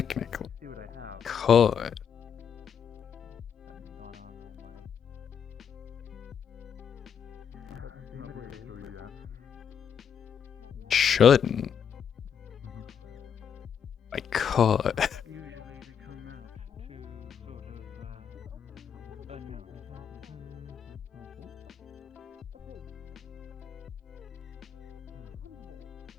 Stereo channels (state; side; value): quieter; right; 7.8 dB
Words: could. Shouldn't. I could.